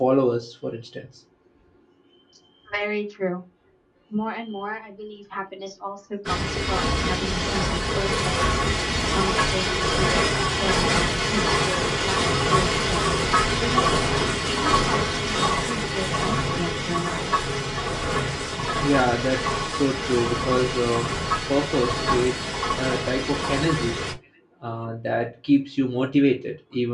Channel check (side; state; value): both; identical; correlation 1.00